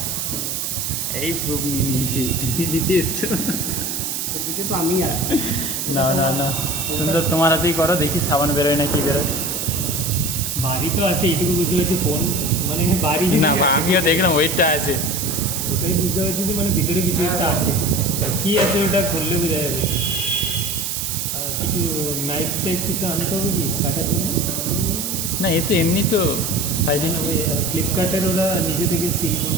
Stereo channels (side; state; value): right; noise; hiss, 2 dB below the sound